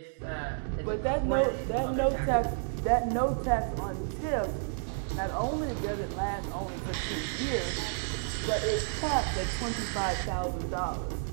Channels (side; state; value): left; silent; digital silence